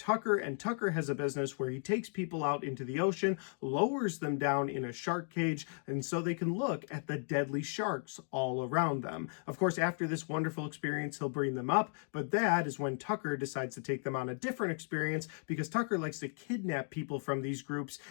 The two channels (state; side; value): silent; right; 54 dB below the other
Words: and Tucker has a business where he takes people out into the ocean, lowers them down in a shark cage, and so they can look at the deadly sharks all around them. Of course, after this wonderful experience, he'll bring them up, but that is when Tucker decides to take them on a different experience, because Tucker likes to kidnap people from these groups